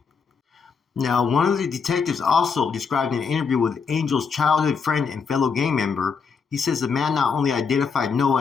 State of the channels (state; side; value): quieter; right; 5.7 dB